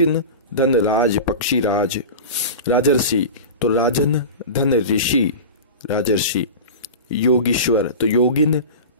धन राज, पक्षी राज। राजर्षि तो राजन धन ऋषि, राजर्षि। योगीश्वर तो योगिन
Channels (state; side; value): inverted; both; correlation -0.30